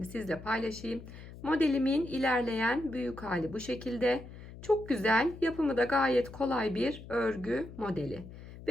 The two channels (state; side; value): noise; left; hum, 15 dB below the sound